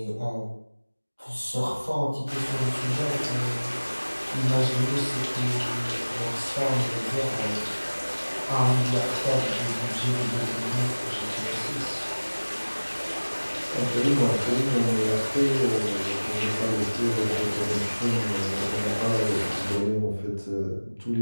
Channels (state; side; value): inverted; both; correlation -1.00